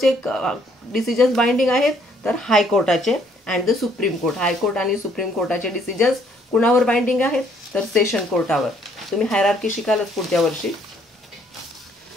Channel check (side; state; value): both; normal; correlation 0.65